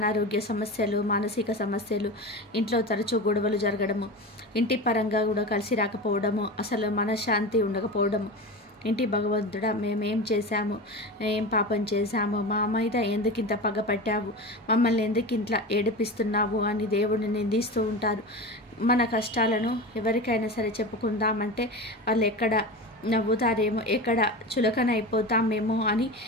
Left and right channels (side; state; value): both; normal; correlation 0.27